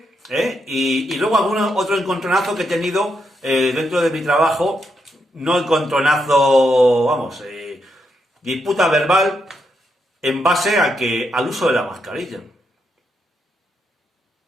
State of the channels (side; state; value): both; normal; correlation 0.81